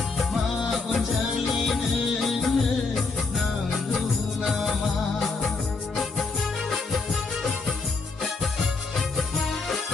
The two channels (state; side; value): quieter; right; 4.1 dB